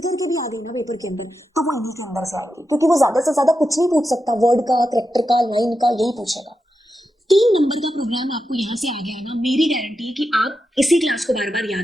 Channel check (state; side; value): normal; both; correlation 0.88